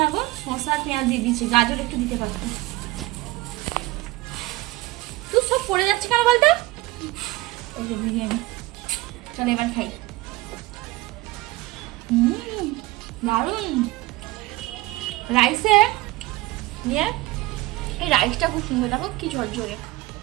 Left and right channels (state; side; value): quieter; left; 19.9 dB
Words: না গো, শসা আর পেঁয়াজ দিয়ে দিচ্ছি, গাজর একটু দিতে পারতো। তুই সব পড়ে যাচ্ছে কেন বলতো? এই যে বিরিয়ানি, চলো এবার খাই। দারুন রাইসে নিয়ে, এই রাইসটা খুব সুন্দর, দেখো কি ঝরঝরে।